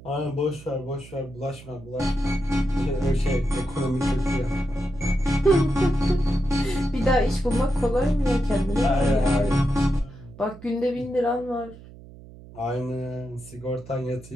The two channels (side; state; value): right; noise; hum, 19 dB below the sound